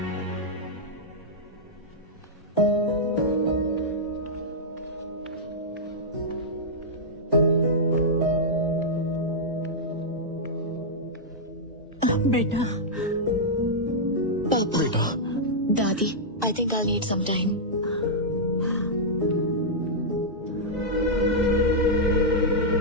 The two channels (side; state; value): both; normal; correlation -0.08